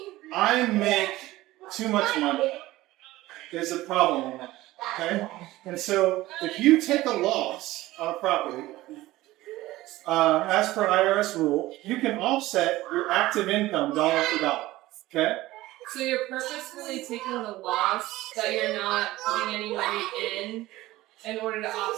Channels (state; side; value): quieter; left; 17.3 dB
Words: I make too much money. There's a problem in that. Okay? And so if you take a loss on a property, as per IRS rule, you can offset your active income dollar for dollar. Okay? So you're purposefully taking the loss that you're not putting any money in order to